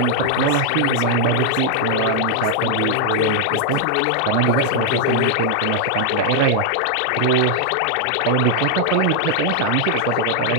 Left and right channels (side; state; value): both; different; correlation 0.00